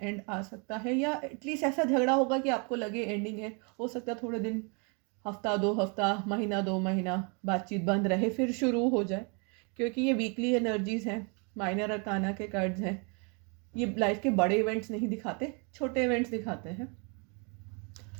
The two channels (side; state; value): left; quieter; 34.7 dB